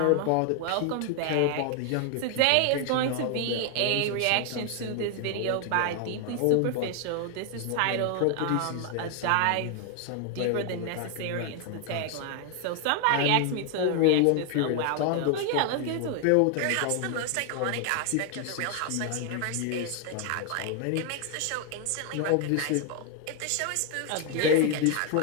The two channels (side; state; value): both; different; correlation 0.00